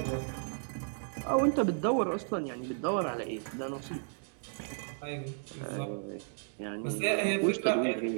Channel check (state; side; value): silent; left; digital silence